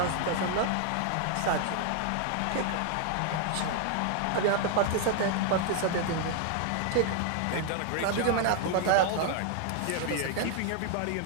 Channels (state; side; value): different; both; correlation 0.00